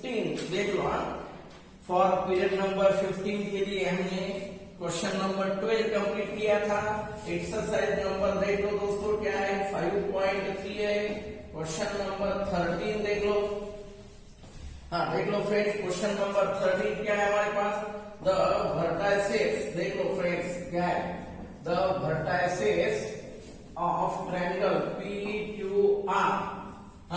देख लो। फॉर पीरियड नंबर 15 के लिए हमने क्वेश्चन नंबर 12 कंप्लीट किया था। एक्सरसाइज नंबर देख लो दोस्तों क्या है, 5.3 है। क्वेश्चन नंबर 13 देख लो। हाँ देख लो फ्रेंड्स, क्वेश्चन नंबर 13 क्या है हमारे पास, द वर्टाइसेस। देख लो फ्रेंड्स क्या है, the vertices of triangle PQR।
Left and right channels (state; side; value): identical; both; correlation 1.00